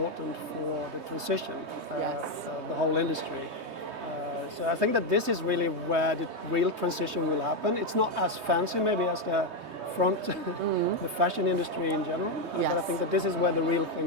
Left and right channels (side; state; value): left; late; 3.2 ms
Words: for the transition, the whole industry. So I think that this is really where the real transition will happen. It's not as fancy maybe as the front, the fashion industry in general, but I think that this is where the real